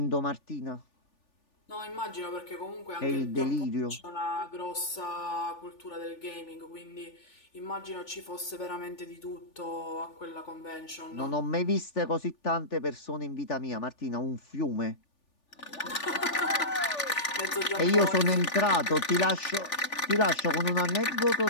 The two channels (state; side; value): late; right; 3.4 ms